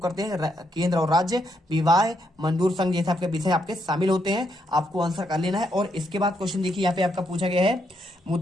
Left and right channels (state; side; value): normal; both; correlation 0.78